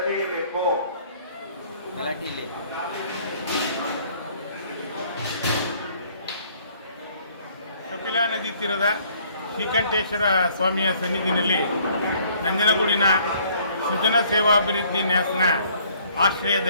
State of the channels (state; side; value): inverted; both; correlation -0.60